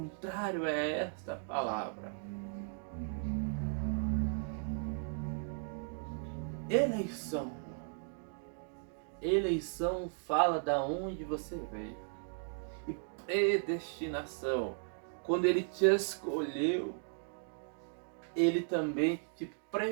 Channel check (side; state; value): left; silent; digital silence